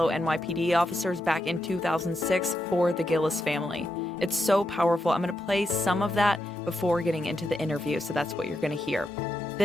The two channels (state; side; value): normal; both; correlation 0.84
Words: NYPD officers back in 2006 for the Gillis family. It's so powerful. I'm going to play some of that before getting into the interview, so that's what you're going to hear.